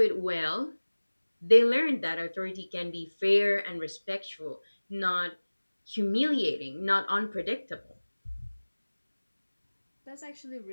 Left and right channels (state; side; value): inverted; both; correlation -1.00